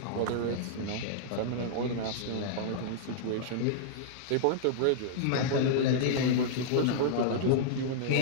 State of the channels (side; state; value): both; different; correlation -0.01